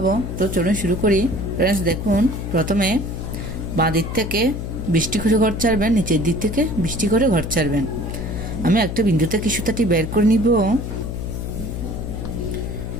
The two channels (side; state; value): left; noise; hum, 5 dB below the sound